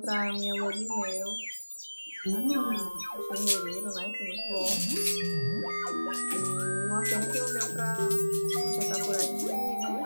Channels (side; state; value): both; inverted; correlation -1.00